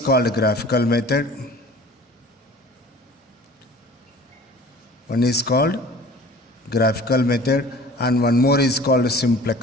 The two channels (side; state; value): both; normal; correlation 0.45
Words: graphical method. One is called graphical method and one more is called